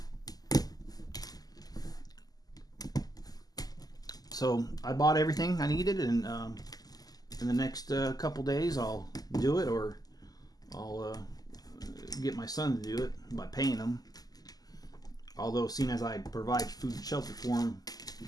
So I bought everything I needed, and in the next couple days I'll do it, or I'll get my son to do it by paying him. Although, seeing as I provide food and shelter for him,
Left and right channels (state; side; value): late; right; 0.18 ms